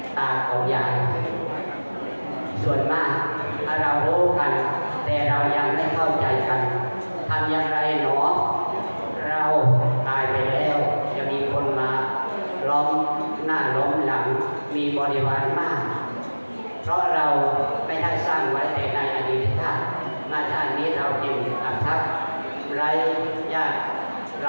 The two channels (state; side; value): inverted; both; correlation -1.00